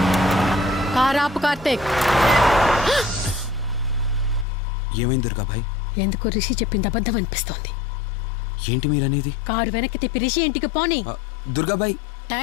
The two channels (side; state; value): right; drops out; at 4.5 s